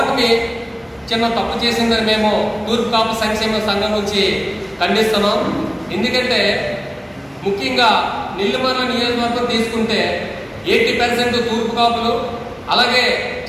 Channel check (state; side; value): identical; both; correlation 1.00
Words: చిన్న తప్పు చేసిందని మేము తూర్పు కాపు సంక్షేమ సంఘం నుంచి ఖండిస్తున్నాం. ఎందుకంటే ముఖ్యంగా నెల్లిమర్ల నియోజకవర్గం తీసుకుంటే 80% తూర్పు కాపులు, అలాగే